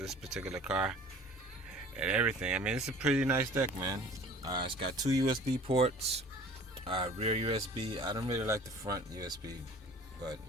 particular car, and everything. I mean, it's a pretty nice deck, man. It's got two USB ports, rear USB. I don't really like the front USB, but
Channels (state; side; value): normal; both; correlation 0.47